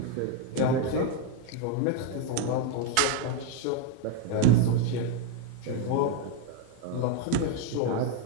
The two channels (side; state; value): both; different; correlation 0.01